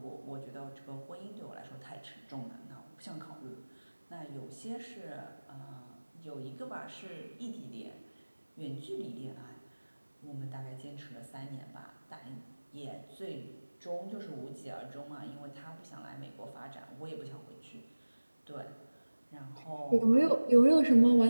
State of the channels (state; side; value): inverted; both; correlation -1.00